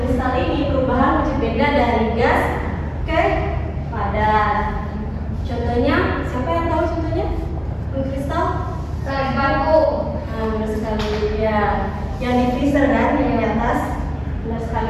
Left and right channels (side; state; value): both; identical; correlation 1.00